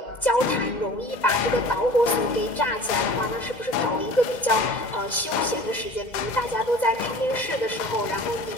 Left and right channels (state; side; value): late; right; 2.1 ms